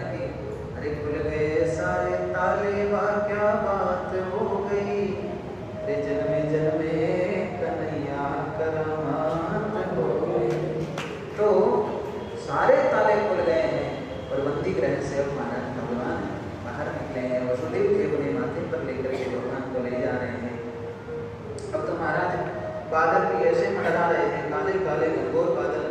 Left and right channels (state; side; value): identical; both; correlation 1.00